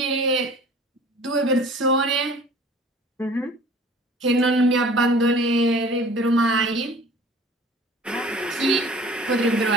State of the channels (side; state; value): both; normal; correlation 0.47